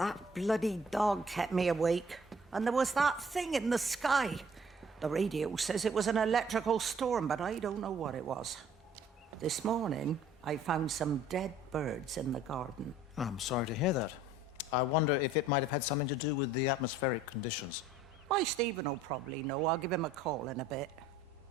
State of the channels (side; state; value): both; normal; correlation 0.55